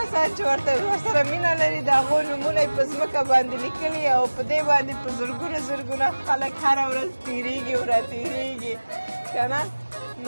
چې ورسره مینه لري د هغو نومونه یې په ځمکه باندې لیکلي او په دې باندې په زرګونه خلک هره ورځ تېرېږي او راتېرېږي که نه.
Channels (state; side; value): inverted; both; correlation -1.00